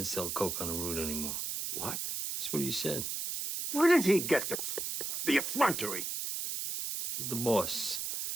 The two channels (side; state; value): right; noise; hiss, 3 dB below the sound